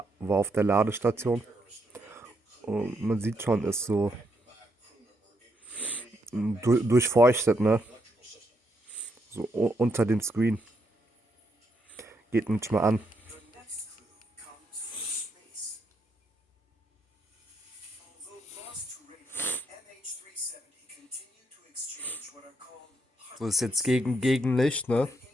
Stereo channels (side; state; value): both; normal; correlation 0.77